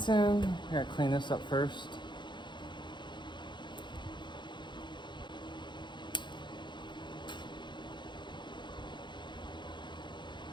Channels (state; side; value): late; right; 0.22 ms